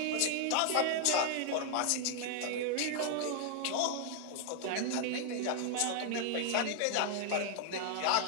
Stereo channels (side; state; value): both; different; correlation 0.00